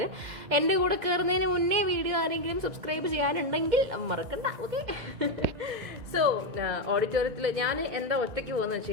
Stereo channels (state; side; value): late; left; 2.0 ms